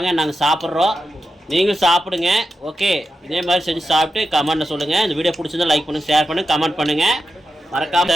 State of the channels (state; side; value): normal; both; correlation 0.89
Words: நாங்கள் சாப்பிட்றோம், நீங்களும் சாப்பிடுங்க. ஓகே, இதே மாதிரி செஞ்சு சாப்பிட்டு கமெண்ட்டில் சொல்லுங்கள். இந்த வீடியோ பிடிச்சிருந்தா லைக் பண்ணுங்கள், ஷேர் பண்ணுங்கள், கமெண்ட் பண்ணுங்கள்.